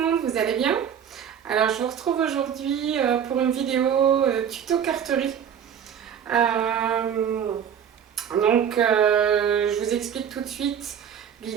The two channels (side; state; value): left; quieter; 8.4 dB